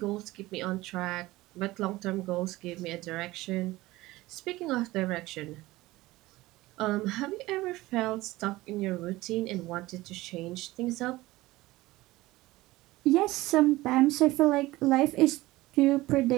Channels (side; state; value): left; quieter; 18.7 dB